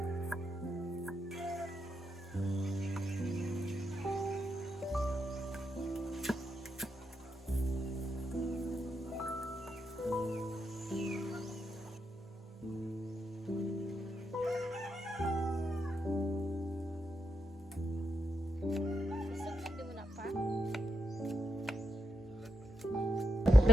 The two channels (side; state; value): both; normal; correlation 0.82